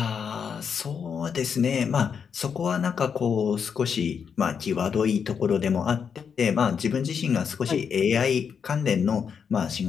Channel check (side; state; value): right; quieter; 6.8 dB